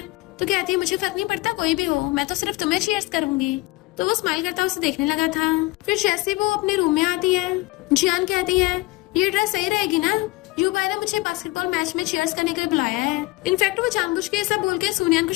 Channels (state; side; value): quieter; right; 21.7 dB